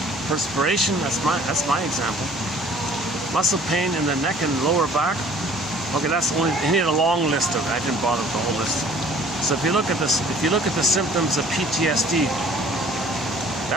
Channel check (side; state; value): both; normal; correlation 0.53